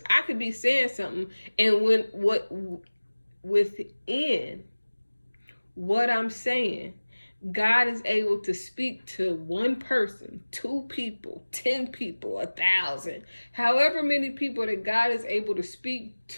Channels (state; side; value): inverted; both; correlation -1.00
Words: I could be saying something and within what I'm saying, God is able to speak to one person, 2 people, 10 people, 1,000, however many people that God is able to speak